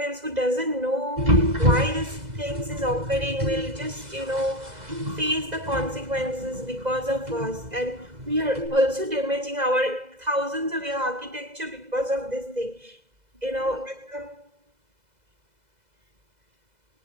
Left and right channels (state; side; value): late; left; 2.0 ms